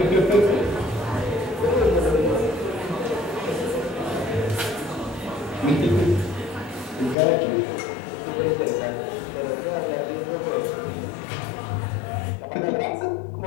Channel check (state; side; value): drops out; right; at 7.2 s